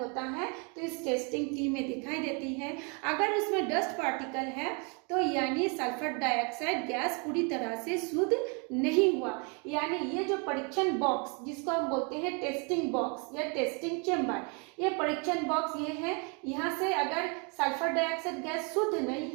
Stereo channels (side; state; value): left; quieter; 34.7 dB